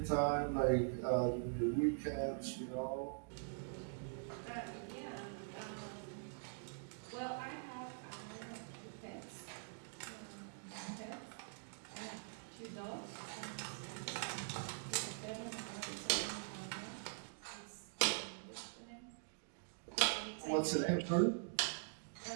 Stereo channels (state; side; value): silent; left; digital silence